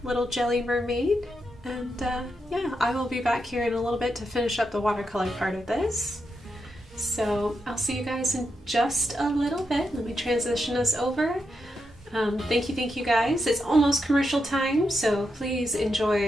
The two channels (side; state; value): both; normal; correlation 0.84